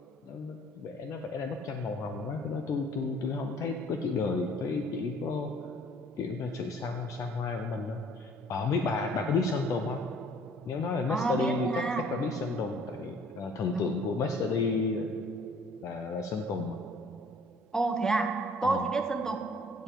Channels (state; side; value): normal; both; correlation 0.55